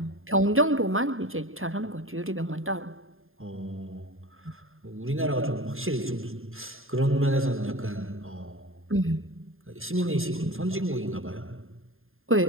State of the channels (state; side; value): late; left; 0.60 ms